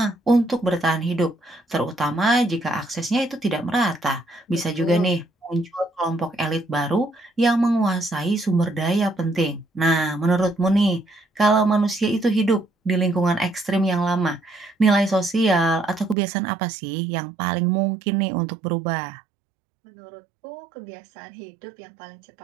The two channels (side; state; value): left; drops out; at 16.2 s